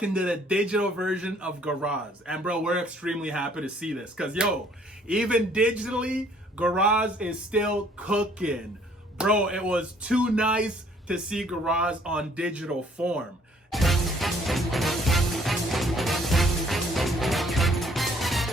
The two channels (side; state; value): both; normal; correlation 0.62